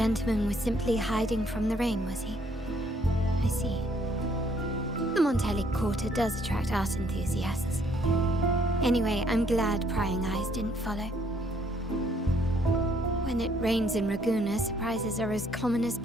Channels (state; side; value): normal; both; correlation 0.66